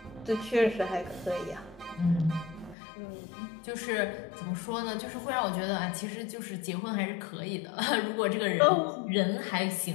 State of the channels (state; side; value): drops out; right; at 2.8 s